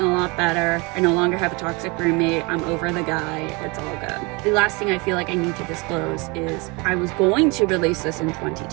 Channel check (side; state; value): left; quieter; 27.8 dB